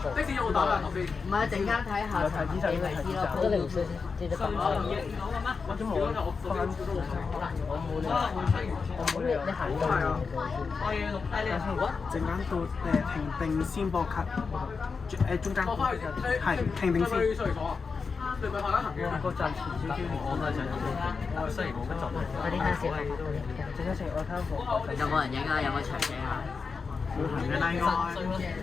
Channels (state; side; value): quieter; right; 5.0 dB